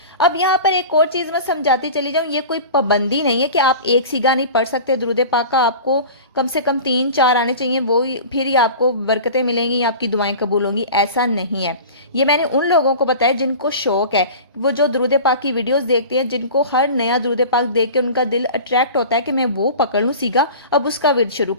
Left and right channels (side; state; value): both; inverted; correlation -0.36